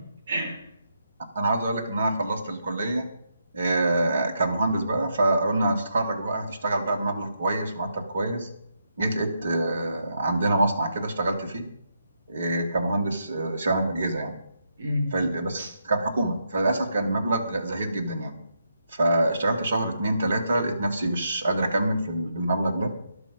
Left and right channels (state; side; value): inverted; both; correlation -0.81